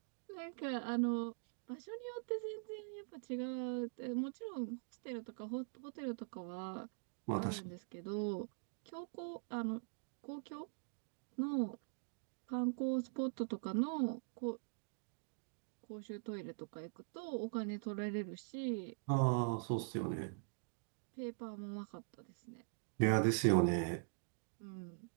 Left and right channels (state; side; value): silent; left; digital silence